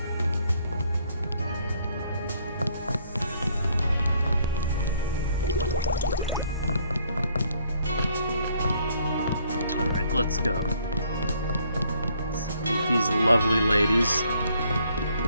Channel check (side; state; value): both; inverted; correlation -0.66